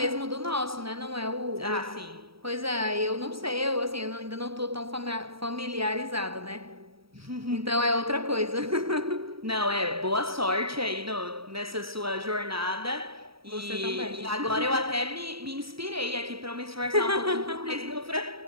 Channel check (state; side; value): late; left; 0.75 ms